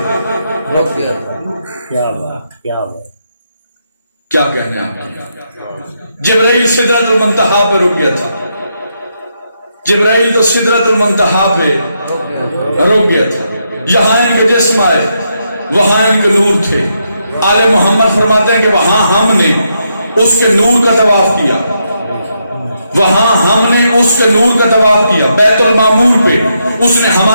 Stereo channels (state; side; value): inverted; both; correlation -0.80